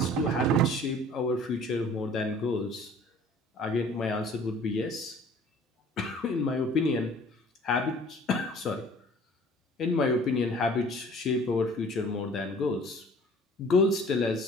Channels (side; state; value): both; normal; correlation 0.50